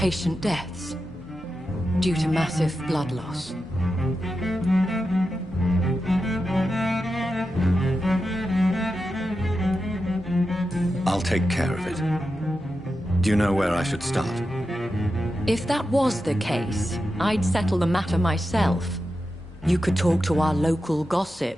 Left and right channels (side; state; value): both; normal; correlation 0.90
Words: deaths due to massive blood loss. I'll take care of it. Do you know where I should start? If that was the case, I'd settle the matter myself. You could talk to our local